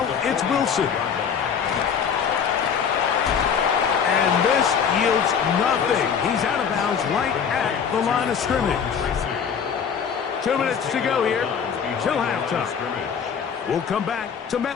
it's Wilson. And this yields nothing. He's out of bounds right at the line of scrimmage. 2 minutes to go here till halftime. We'll come back to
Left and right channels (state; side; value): quieter; right; 7.1 dB